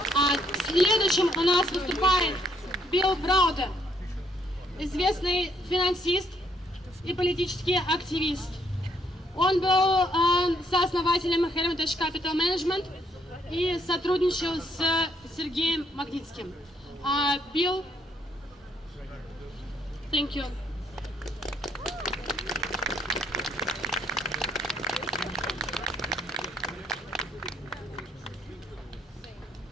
Следующим у нас выступает Browder, известный финансист и политический активист. Он был сооснователем Hermitage Capital Management и сотрудничал с Сергеем Магнитским. Bill, thank you.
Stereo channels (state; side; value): normal; both; correlation 0.70